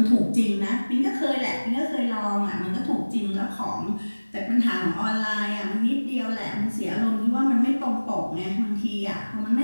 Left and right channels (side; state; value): both; inverted; correlation -1.00